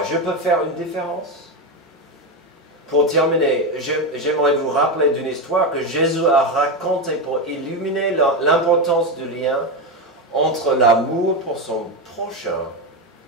peux faire une différence? Pour terminer, j'aimerais vous rappeler d'une histoire que Jésus a racontée pour illuminer l'importance du lien entre l'amour pour son prochain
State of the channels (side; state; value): both; normal; correlation 0.13